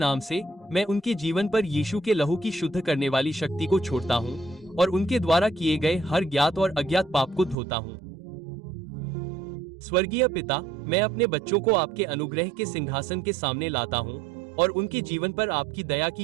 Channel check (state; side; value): drops out; left; at 7.6 s